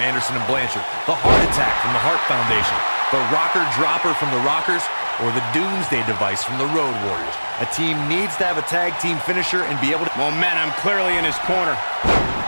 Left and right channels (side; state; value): both; inverted; correlation -1.00